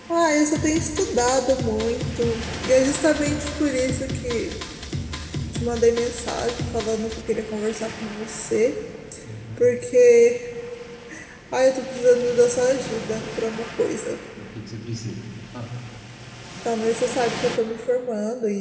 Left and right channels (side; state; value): both; identical; correlation 1.00